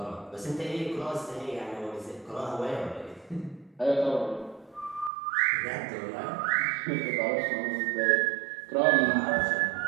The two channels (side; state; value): left; drops out; at 5.1 s